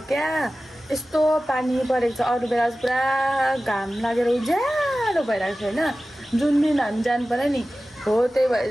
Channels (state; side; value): normal; both; correlation 0.96